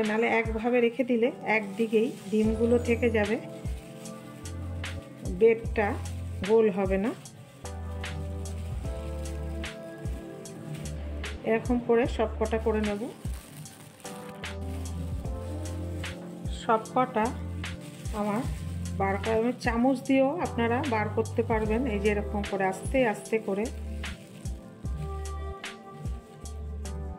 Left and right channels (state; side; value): identical; both; correlation 1.00